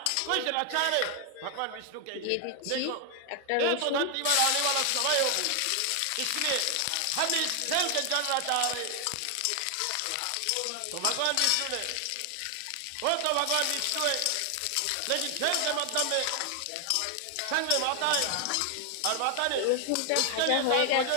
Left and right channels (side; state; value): both; different; correlation 0.00